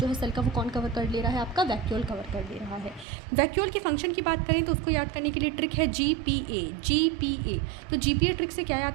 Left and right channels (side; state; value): left; drops out; at 3.1 s